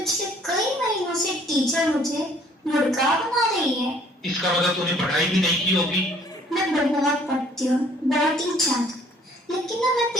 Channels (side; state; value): both; normal; correlation 0.59